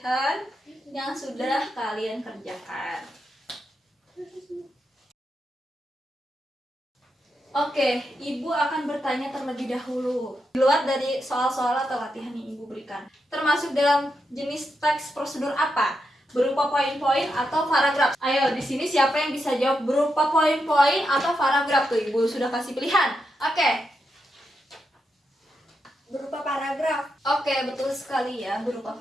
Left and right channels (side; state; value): both; normal; correlation 0.85